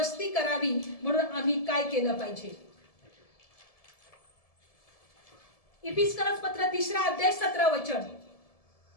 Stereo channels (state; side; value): late; right; 1.7 ms